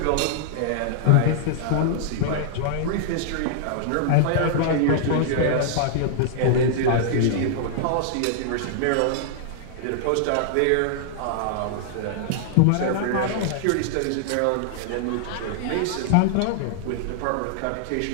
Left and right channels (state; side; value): different; both; correlation -0.01